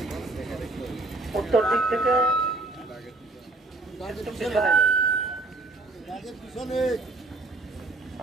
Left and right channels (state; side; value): quieter; left; 3.1 dB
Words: উত্তর দিক থেকে পিছনে